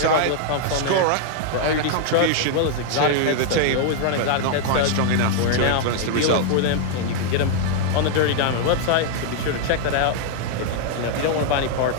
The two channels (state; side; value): different; both; correlation 0.00